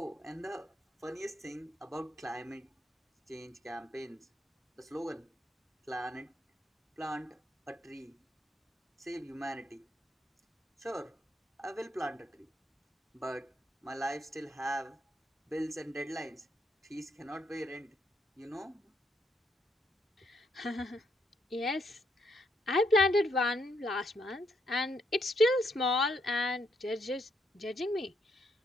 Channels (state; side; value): normal; both; correlation 0.76